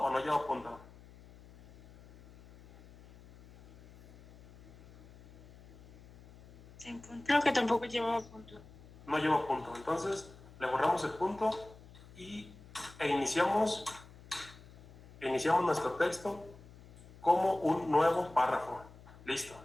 no lleva punto? Sin punto. Creo que tampoco llevaba punto. No lleva punto. Entonces, le borramos el punto e iniciamos nuestro texto como un nuevo párrafo. Listo.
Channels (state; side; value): noise; left; hum, 21 dB below the sound